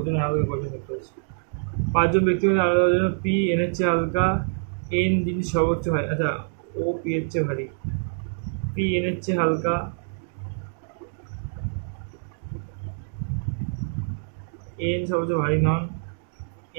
হালকা কজন ব্যক্তি আছে পাঁচজন ব্যক্তি মধ্যে আলাদা জন্য পি এন এর চেয়ে হালকা এন জিনিস সর্বোচ্চ হয় আচ্ছা ও পি এর চেয়ে ভারী পি এন এর চেয়ে হালকা এন সবচেয়ে ভারী নন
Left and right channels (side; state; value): left; silent; digital silence